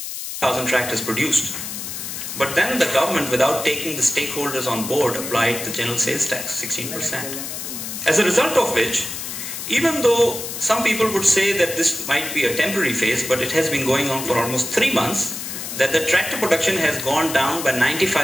1,000 tractors produced. But then the government, without taking the stakeholders on board, applied the general sales tax, 16%. As a result of which, even though some people would say that this might be a temporary phase, but it has been going on for almost 3 months, that the tractor production has gone down by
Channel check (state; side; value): noise; left; hiss, 7 dB below the sound